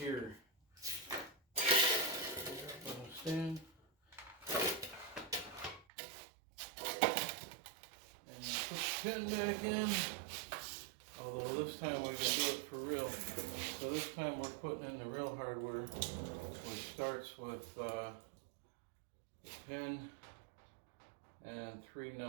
Put a stand. And put the pin back in. Although this time we can do it for real. So this time we're putting in the real hardware, which starts with the pin and 3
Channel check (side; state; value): left; drops out; at 5.9 s